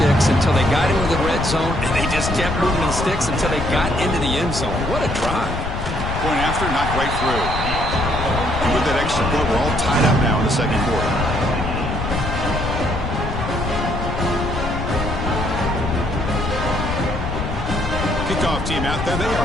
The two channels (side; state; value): left; noise; rumble, 4 dB below the sound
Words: until they got into the red zone, and they just kept moving the sticks until they got into the end zone. What a drive. Point after, knocked right through. And with that extra point, we're all tied up now in the second quarter. Kickoff team out there, they